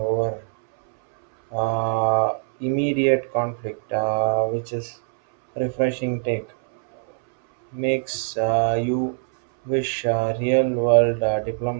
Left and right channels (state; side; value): silent; left; 64 dB below the other